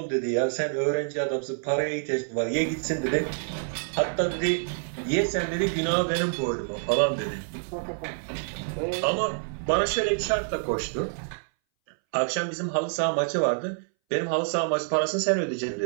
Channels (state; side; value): silent; left; 60 dB below the other